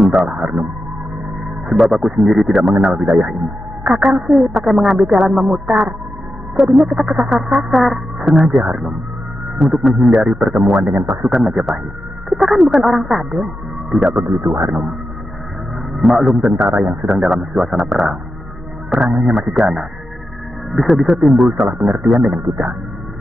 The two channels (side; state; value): both; normal; correlation 0.90